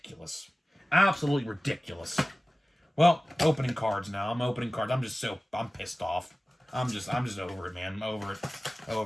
Absolutely ridiculous. Well, opening cards now. I'm opening cards. I'm pissed off. I'm just over it, man. I'm over it.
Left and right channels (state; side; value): normal; both; correlation 0.97